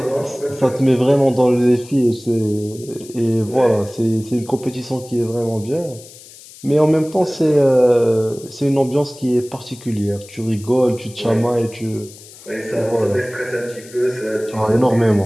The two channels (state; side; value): noise; left; hiss, 20 dB below the sound